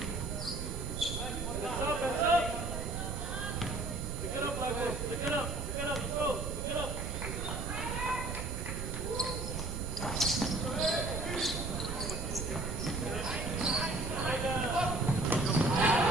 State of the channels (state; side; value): noise; right; rumble, 4 dB below the sound